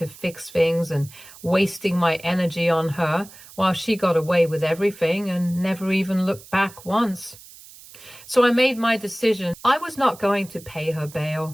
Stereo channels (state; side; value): noise; right; hiss, 20 dB below the sound